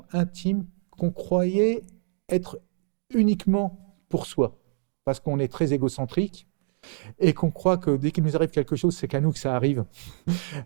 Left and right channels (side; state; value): left; silent; digital silence